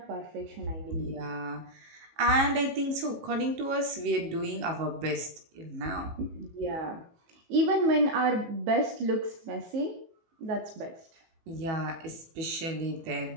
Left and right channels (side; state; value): left; late; 18 ms